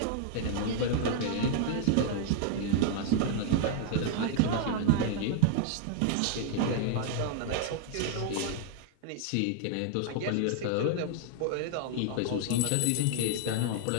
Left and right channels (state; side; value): different; both; correlation 0.00